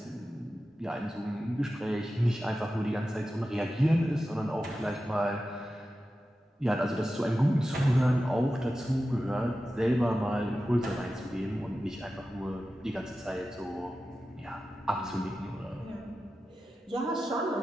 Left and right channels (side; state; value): both; normal; correlation 0.93